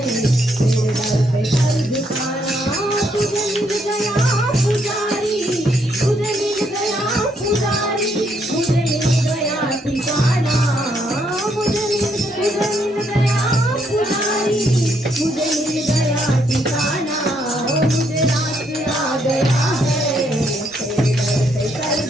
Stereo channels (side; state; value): both; normal; correlation 0.74